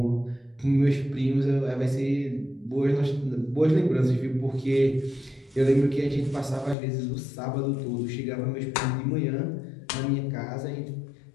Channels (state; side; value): drops out; right; at 6.8 s